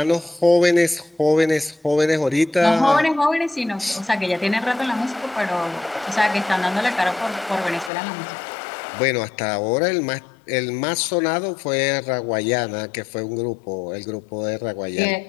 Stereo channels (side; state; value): right; drops out; at 7.9 s